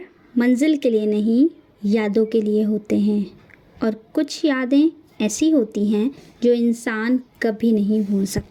मंजिल के लिए नहीं, यादों के लिए होते हैं और कुछ यादें ऐसी होती हैं जो इंसान कभी नहीं भूल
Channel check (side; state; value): both; identical; correlation 1.00